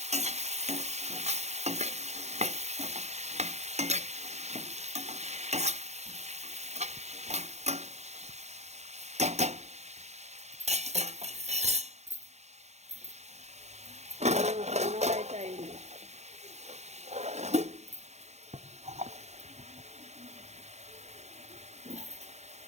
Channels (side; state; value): left; late; 0.32 ms